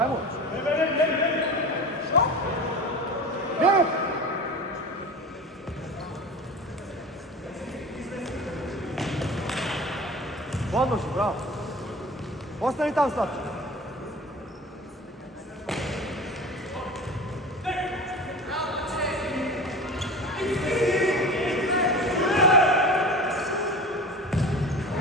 Krene! Odloži, bravo! Ostani tam, Slavče!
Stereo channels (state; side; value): normal; both; correlation 0.34